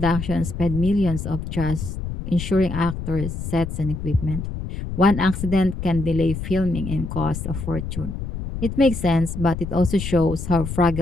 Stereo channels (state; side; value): noise; left; rumble, 6 dB below the sound